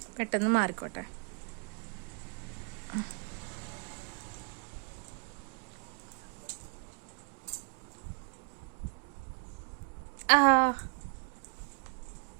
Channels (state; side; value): quieter; left; 34.3 dB